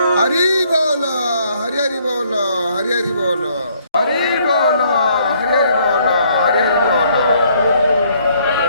হরি বল, হরি হরি বল, হরি হরি বল, হরি বল, হরি হরি বল, হরি হরি বল।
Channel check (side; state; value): both; inverted; correlation -0.66